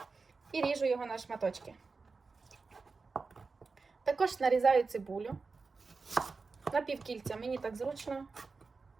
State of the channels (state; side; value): quieter; left; 4.3 dB